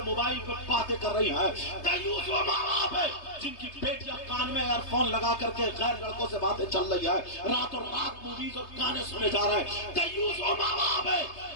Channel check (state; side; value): late; right; 3.2 ms